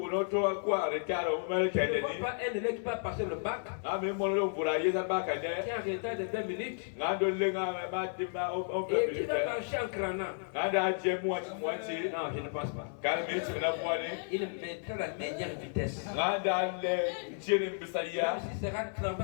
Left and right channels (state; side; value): silent; right; 56 dB below the other